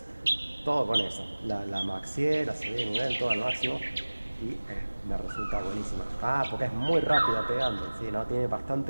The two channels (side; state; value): both; inverted; correlation -1.00